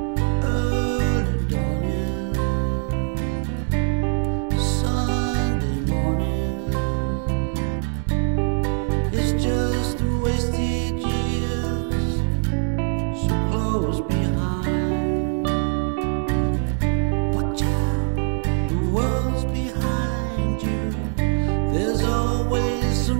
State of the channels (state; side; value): silent; left; 64 dB below the other